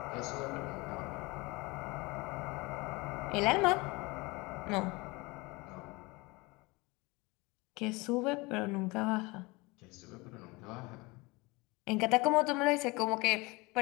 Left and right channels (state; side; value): quieter; right; 24.6 dB